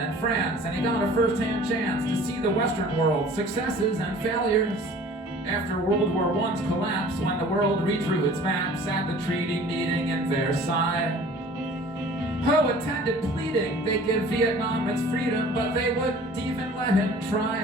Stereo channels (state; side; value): normal; both; correlation 0.47